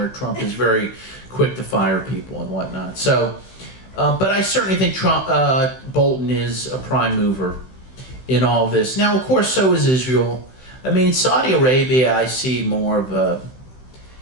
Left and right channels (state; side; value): late; right; 16 ms